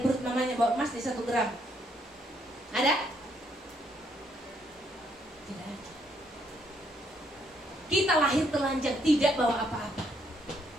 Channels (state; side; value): normal; both; correlation 0.72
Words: perut mamanya bawa emas di 1 gram. Ada? Tidak ada. Kita lahir telanjang, tidak bawa apa-apa.